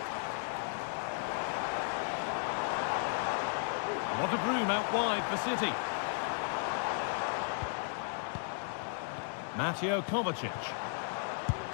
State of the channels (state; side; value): silent; right; digital silence